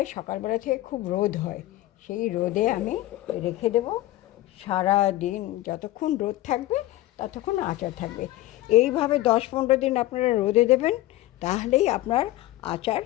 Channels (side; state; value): right; quieter; 16.2 dB